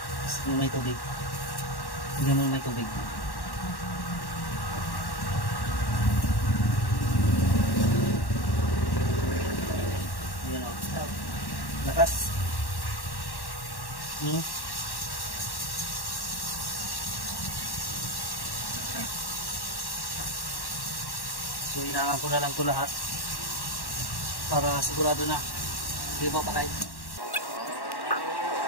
Sige may tubig. Sige mo may tubig. Ayan o. Lakas. So inaangan ko na lang ito lahat para sigurado na hindi ba patay.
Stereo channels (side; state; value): right; late; 1.1 ms